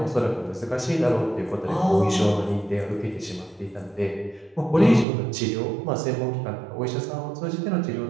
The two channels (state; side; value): drops out; left; at 5.1 s